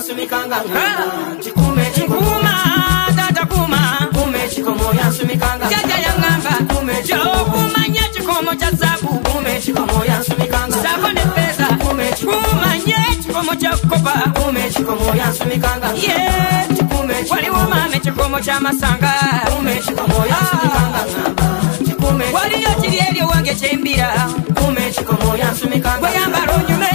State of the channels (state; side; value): silent; right; digital silence